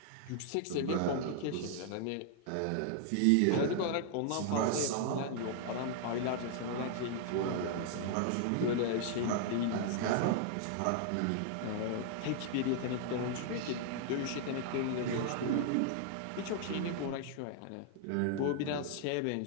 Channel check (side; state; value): both; different; correlation -0.01